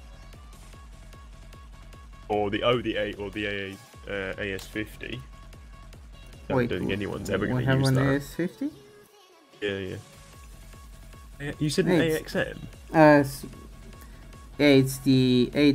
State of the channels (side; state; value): both; identical; correlation 1.00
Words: Or the AS50. I Wait, don't think anyone's ever we going to have use an that. AS50. Yeah. You said an It's- AXM? Yeah, it's the